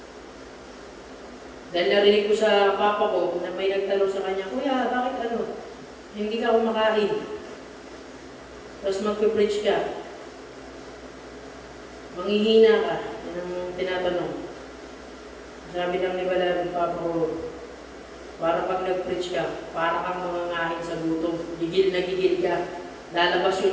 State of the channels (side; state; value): both; identical; correlation 1.00